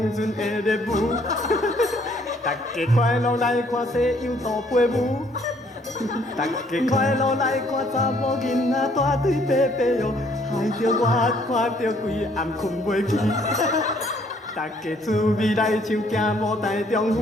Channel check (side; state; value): both; normal; correlation 0.64